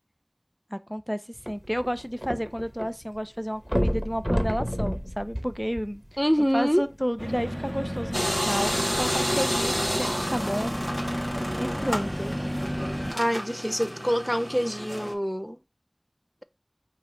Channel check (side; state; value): both; identical; correlation 1.00